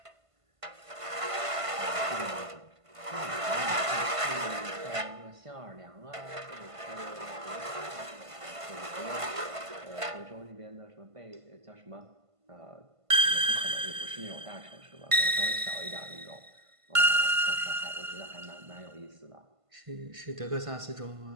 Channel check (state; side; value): late; left; 1.5 ms